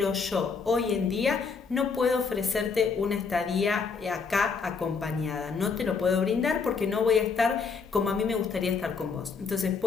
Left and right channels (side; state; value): right; quieter; 5.2 dB